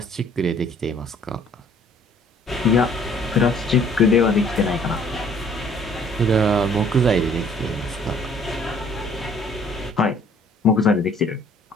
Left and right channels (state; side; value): normal; both; correlation 0.58